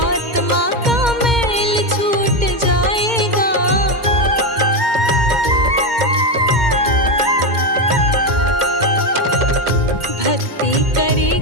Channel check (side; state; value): left; late; 2.1 ms